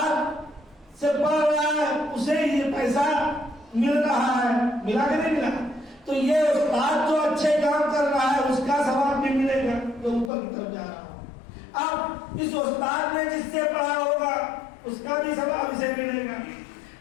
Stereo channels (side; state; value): right; drops out; at 10.3 s